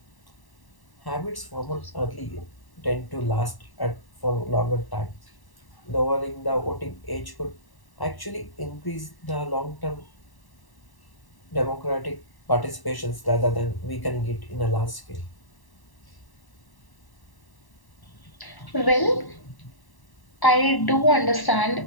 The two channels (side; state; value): right; late; 1.1 ms